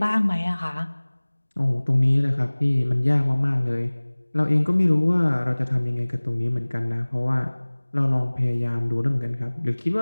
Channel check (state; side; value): inverted; both; correlation -1.00